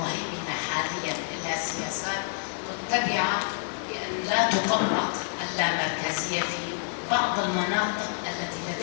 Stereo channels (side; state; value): right; silent; 59 dB below the other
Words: حاليا لها سياسات متبعه بان لا تطبق اللامركزيه في بعض المناطق التي